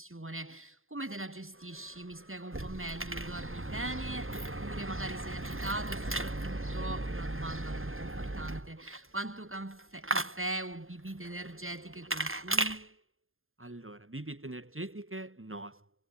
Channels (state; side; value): late; left; 0.60 ms